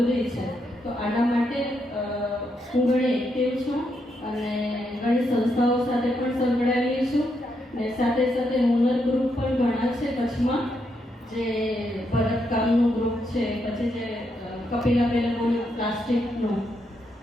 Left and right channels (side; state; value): both; normal; correlation 0.80